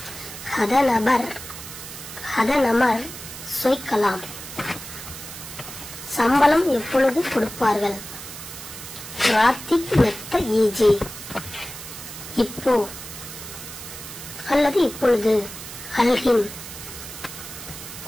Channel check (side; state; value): right; noise; hiss, 12 dB below the sound